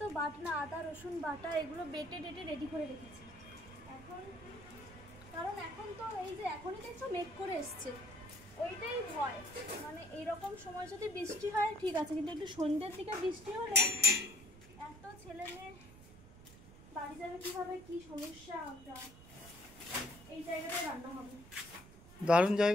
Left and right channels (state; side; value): noise; right; rumble, 19 dB below the sound